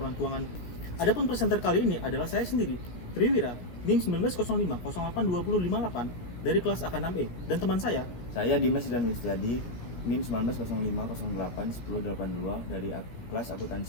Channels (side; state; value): right; late; 17 ms